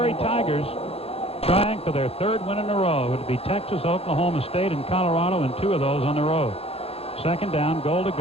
Tigers trying for their 3rd win in a row. It would be Texas, Oklahoma State, and Colorado, and 2 of those on the road. Second down, goal to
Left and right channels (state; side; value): late; right; 0.29 ms